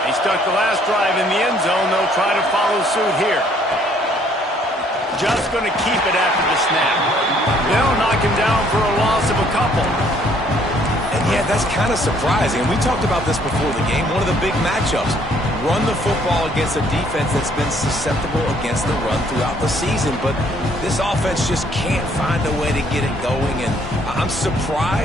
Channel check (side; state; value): both; normal; correlation 0.63